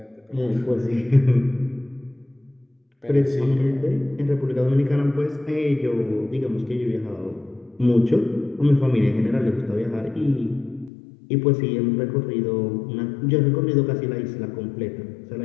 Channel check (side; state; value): right; drops out; at 10.9 s